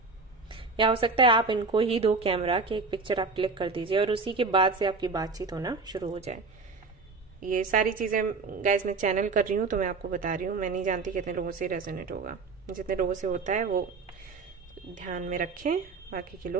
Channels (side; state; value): left; quieter; 4.2 dB